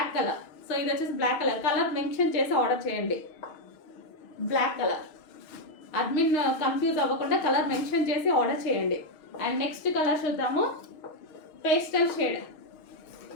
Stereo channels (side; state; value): right; late; 6.4 ms